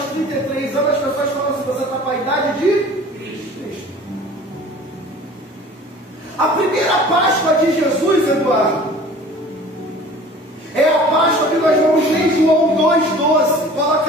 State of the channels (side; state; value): both; normal; correlation 0.45